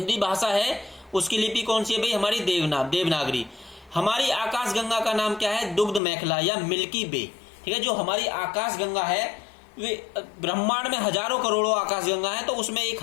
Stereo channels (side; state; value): right; drops out; at 6.0 s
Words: भाषा है उसकी लिपि कौन सी है भाई, हमारी देवनागरी। हमारी आकाश गंगा का नाम क्या है, दुग्ध मेखला या मिल्की वे, ठीक है। जो हमारी आकाश गंगा है, वे ब्रह्मांड में हजारों करोड़ों आकाश गंगा है, तो उसमें एक